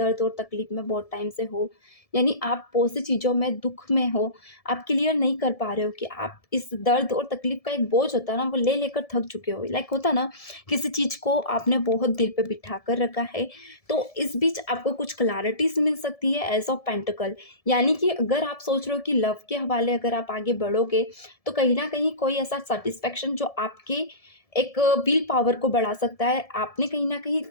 और तकलीफ में बहुत टाइम से हो, यानी आप बहुत सी चीज़ों में दुःख में हो, आप क्लियर नहीं कर पा रहे हो कि आप इस दर्द और तकलीफ़ का एक बोझ होता है ना, वो ले लेकर थक चुके हो। लाइक होता है ना, किसी चीज़ को आपने बहुत दिल पे बिठा कर रखा है, तो इस बीच आपको कुछ क्लैरिटीज़ मिल सकती है एज़ ऑफ पेंटिकल। यानी कि अगर आप सोच रहे हो कि लव के हवाले अगर आप आगे बढ़ोगे, तो कहीं न कहीं कोई ऐसा सैटिस्फैक्शन जो आपके एक विल पावर को बढ़ा सकता है। आपने कहीं न कहीं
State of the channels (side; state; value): right; late; 1.7 ms